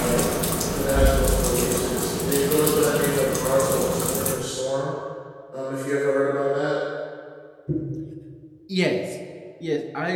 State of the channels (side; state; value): both; identical; correlation 1.00